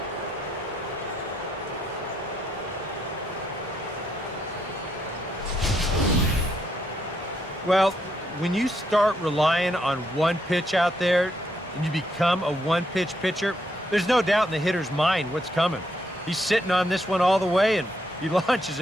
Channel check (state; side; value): normal; both; correlation 0.76